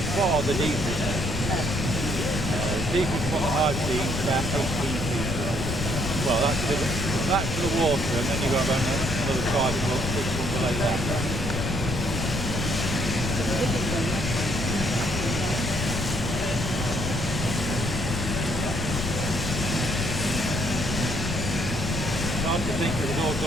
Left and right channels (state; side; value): noise; left; rumble, 3 dB below the sound